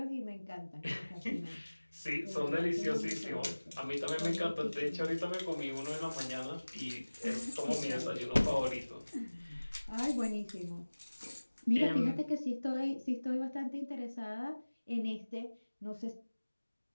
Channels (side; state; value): both; inverted; correlation -1.00